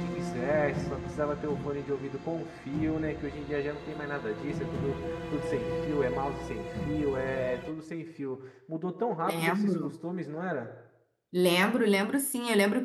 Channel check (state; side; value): identical; both; correlation 1.00